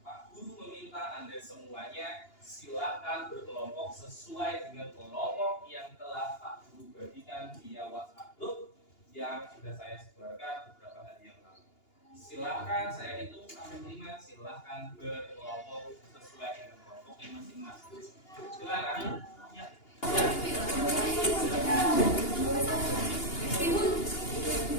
Pak Guru meminta Anda semuanya silakan berkelompok sesuai dengan kelompok yang telah Pak Guru bagikan via WhatsApp group yang sudah saya sebarkan beberapa hari yang lalu. Silakan, saya hitung sampai 5, silakan berkelompok sesuai dengan kelompoknya masing-masing. Silakan. Ya.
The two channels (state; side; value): late; right; 2.8 ms